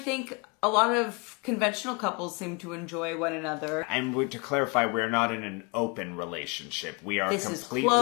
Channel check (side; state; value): right; quieter; 30.7 dB